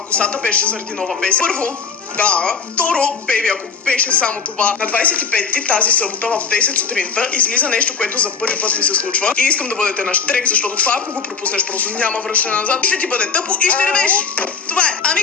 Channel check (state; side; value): quieter; right; 5.6 dB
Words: косата, беше заради нова песен. Първо, да. Второ, бейби, ако беше само това, на 25-ти тази събота в 10 сутринта излиза нещо, което за първи път ми се случва. И искам да бъдете на штрек, защото това, ако го пропуснеш, просто няма връщане назад. Ще ти бъде тъпо и ще ревеш. Това е. Ами